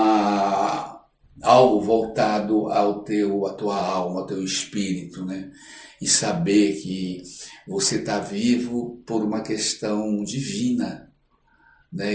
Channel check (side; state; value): both; identical; correlation 1.00